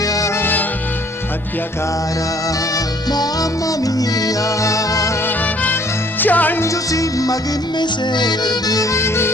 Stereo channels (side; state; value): both; normal; correlation 0.59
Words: tia cara, mamma mia, ciangio sì ma che mi servi,